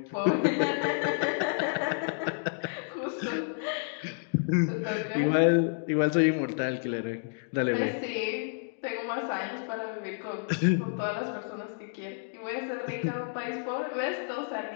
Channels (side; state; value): right; silent; digital silence